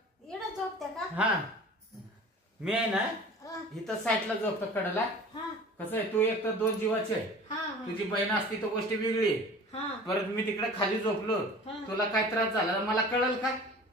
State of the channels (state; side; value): normal; both; correlation 0.42